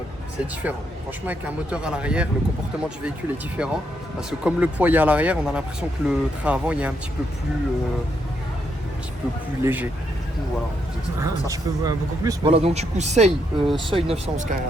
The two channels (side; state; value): both; normal; correlation 0.78